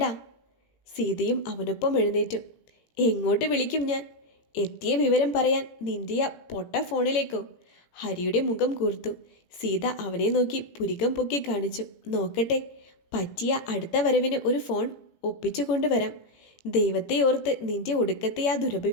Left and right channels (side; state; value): right; late; 18 ms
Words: സീതയും അവനൊപ്പം എഴുന്നേറ്റു. എങ്ങോട്ട് വിളിക്കും ഞാൻ? എത്തിയ വിവരം പറയാൻ നിന്റെ ആ പൊട്ട ഫോണിലേക്കോ? ഹരിയുടെ മുഖം കൂർത്തു. സീത അവനെ നോക്കി പുരികം പൊക്കി കാണിച്ചു. നോക്കട്ടെ, പറ്റിയ അടുത്ത വരവിന് ഒരു ഫോൺ ഒപ്പിച്ചു കൊണ്ടുവരാം. ദൈവത്തെ ഓർത്ത് നിന്റെ ഒടുക്കത്തെ ആ